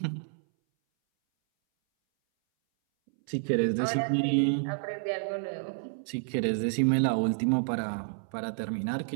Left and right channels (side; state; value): left; silent; 58 dB below the other